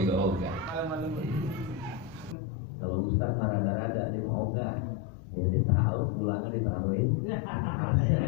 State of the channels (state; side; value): drops out; right; at 2.4 s